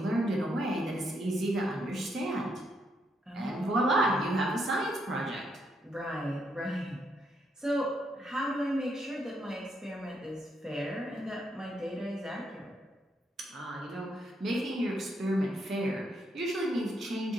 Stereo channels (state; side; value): normal; both; correlation 0.76